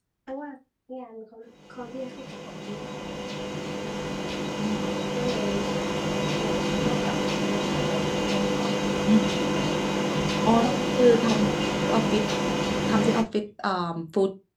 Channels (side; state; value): both; identical; correlation 1.00